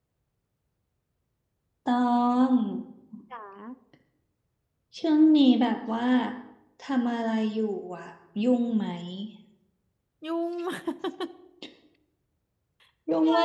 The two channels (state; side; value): identical; both; correlation 1.00